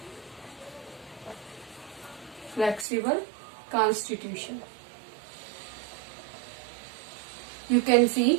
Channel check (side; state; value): left; drops out; at 2.9 s